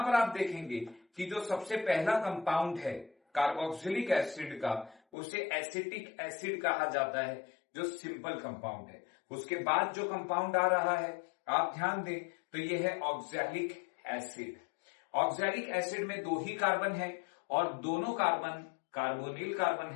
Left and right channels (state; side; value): drops out; right; at 5.0 s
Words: पर आप देखेंगे कि जो सबसे पहला कंपाउंड है कार्बोक्सिलिक एसिड का, उसे एसिटिक एसिड कहा जाता है, जो सिंपल कंपाउंड है। उसके बाद जो कंपाउंड आ रहा है आप ध्यान दें तो यह है ऑक्सैलिक एसिड। ऑक्सैलिक एसिड में दो ही कार्बन है और दोनों कार्बन कार्बोनिल कार्बन